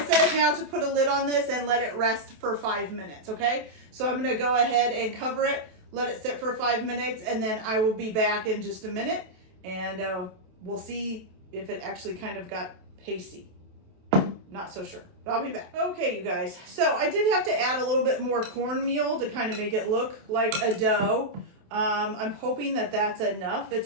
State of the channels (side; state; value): left; late; 27 ms